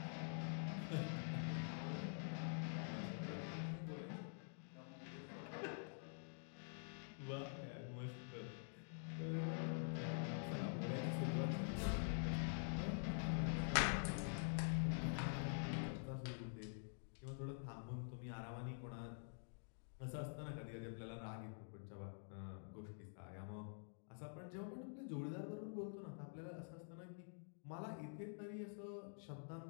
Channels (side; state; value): right; silent; digital silence